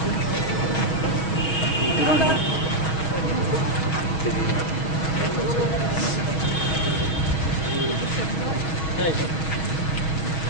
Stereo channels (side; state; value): right; late; 6.3 ms